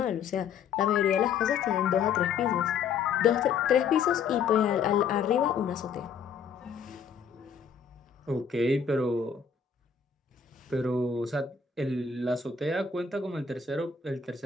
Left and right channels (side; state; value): right; quieter; 6.5 dB